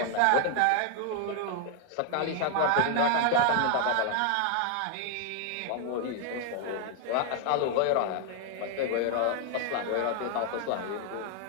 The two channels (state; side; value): different; both; correlation 0.00